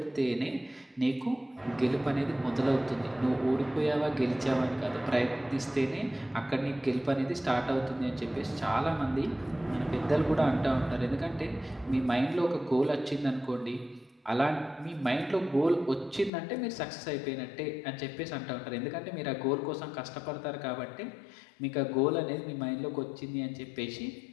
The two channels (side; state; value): right; drops out; at 16.3 s